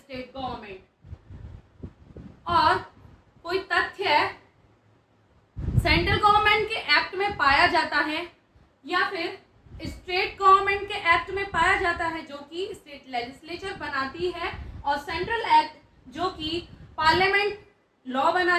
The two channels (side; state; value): both; identical; correlation 1.00